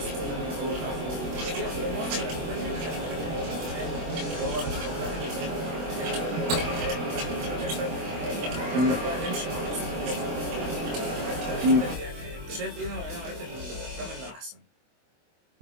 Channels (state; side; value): late; left; 24 ms